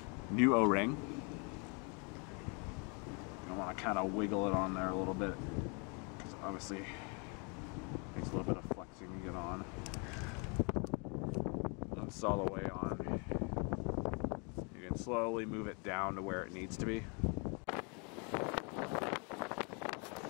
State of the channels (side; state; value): right; quieter; 34.6 dB